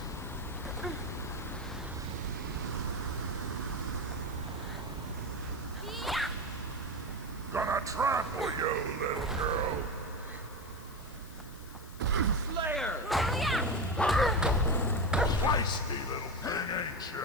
Gonna trample you, little girl. Slayer! Feisty little thing, ain't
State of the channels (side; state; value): left; noise; hiss, 20 dB below the sound